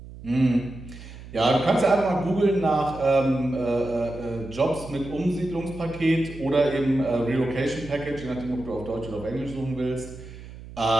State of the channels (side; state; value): right; noise; hum, 15 dB below the sound